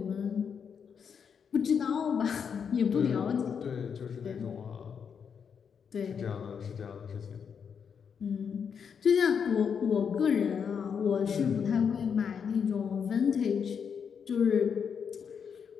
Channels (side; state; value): right; quieter; 6.9 dB